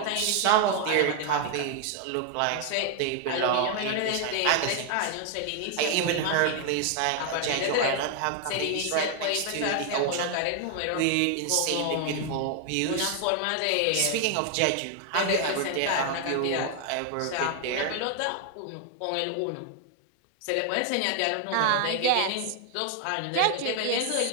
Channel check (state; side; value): different; both; correlation 0.00